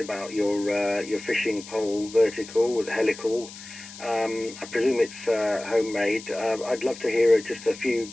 about your fishing pole vertical, helical. I presume it's homemade. I'd love to hear just a few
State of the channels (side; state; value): left; noise; hiss, 15 dB below the sound